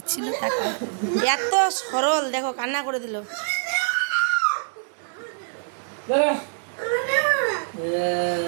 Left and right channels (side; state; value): left; silent; digital silence